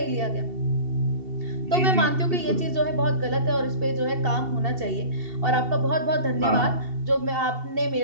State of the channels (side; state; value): left; late; 2.7 ms